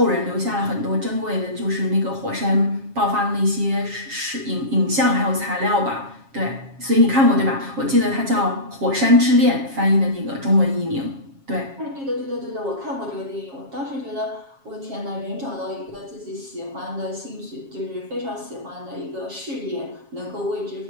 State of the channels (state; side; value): late; left; 7.4 ms